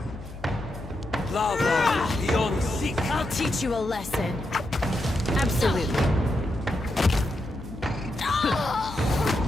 Lava beyond seek. I'll teach you a lesson. Absolutely.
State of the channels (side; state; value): left; noise; hum, 14 dB below the sound